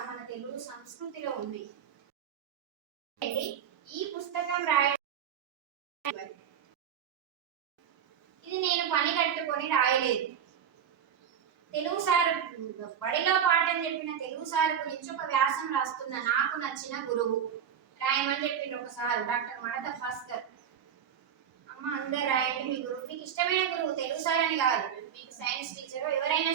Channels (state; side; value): quieter; left; 8.5 dB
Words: మన తెలుగు సంస్కృతిలో ఉన్నాయి. ఈ పుస్తకం రాయడం ఇది నేను పని కట్టుకొని రాయలేదు. తెలుగు సార్ బడిలో పాఠం చెప్పిన తెలుగు సార్ గురించి ఒక వ్యాసం రాస్తున్నా. నాకు నచ్చిన గురువు రాయమని చెప్పింది ఒకసారి డాక్టర్ మడత భాస్కర్. అమ్మ అందరు రాయండి మీ గురువు, మీకు ఇష్టమైన గురువు తెలుగు సార్ అని కాదు, మీకు సైన్స్ టీచర్ ఎవరైనా